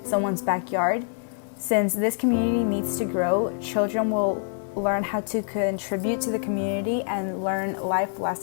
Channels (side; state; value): right; silent; digital silence